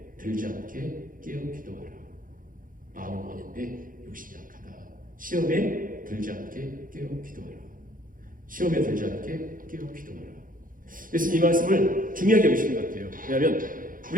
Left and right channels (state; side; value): late; left; 0.40 ms